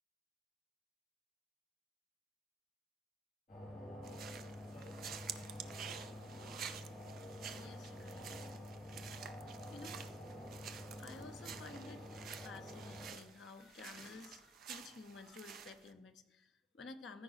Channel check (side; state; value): both; normal; correlation 0.65